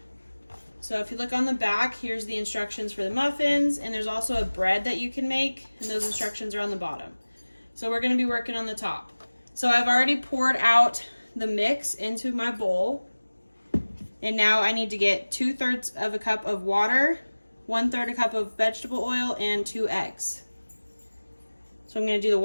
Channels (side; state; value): both; inverted; correlation -1.00